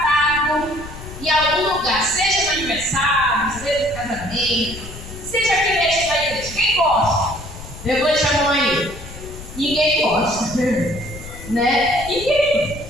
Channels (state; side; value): noise; left; rumble, 13 dB below the sound